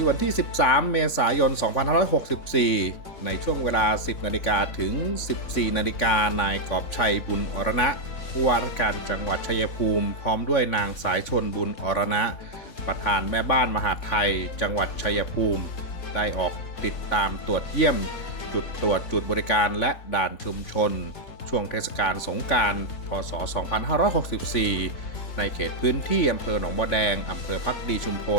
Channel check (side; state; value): right; late; 3.5 ms